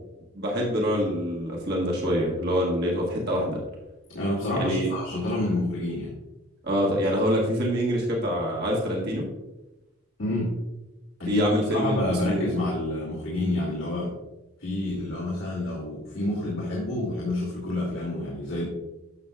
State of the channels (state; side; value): normal; both; correlation 0.52